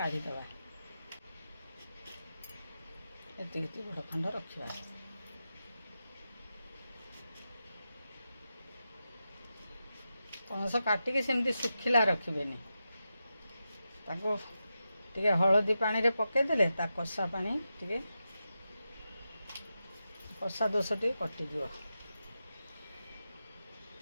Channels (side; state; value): both; inverted; correlation -0.90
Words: एति बड़ खंड रखा। पणस काटिकी सेमती सुखिला रखिबेनी। ताको टिके हलदी पानी रे पकईदेले ता कषा पानी टिके कषा दोष टे कटिज।